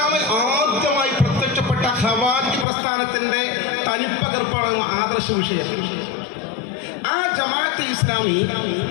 ആദ്യമായി പ്രത്യക്ഷപ്പെട്ട ഖവാരിജ് പ്രസ്ഥാനത്തിന്റെ തനിപ്പകർപ്പാണ് ആദർശ വിഷയം. ആ ജമാഅത്തെ ഇസ്ലാമി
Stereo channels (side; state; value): right; drops out; at 2.7 s